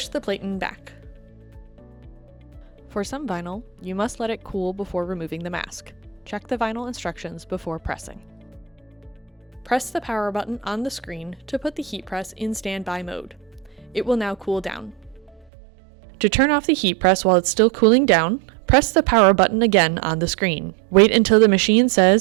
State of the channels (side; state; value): left; drops out; at 15.5 s